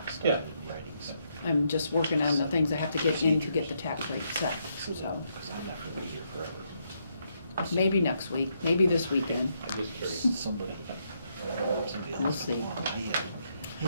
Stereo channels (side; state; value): both; inverted; correlation -0.77